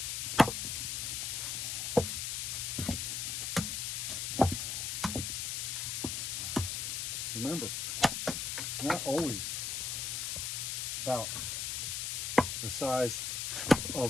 Remember, it's not always about the size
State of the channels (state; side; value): noise; left; hiss, 1 dB below the sound